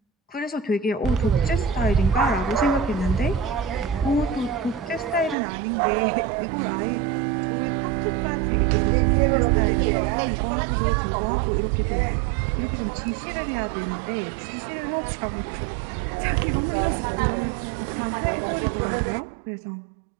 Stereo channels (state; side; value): drops out; left; at 5.4 s